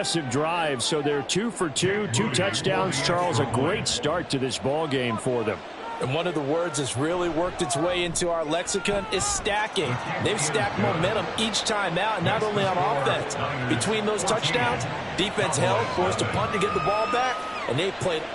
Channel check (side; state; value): both; identical; correlation 1.00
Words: drive, so they're 2 for 2, 2 touchdowns. Charles, a great start to this ball game for them. And one of the words that's really worked its way into our lexicon is stacking. They've stacked momentum each time out, not only on offense. Between those touchdowns, defense held, forced a punt to get the ball back, and they played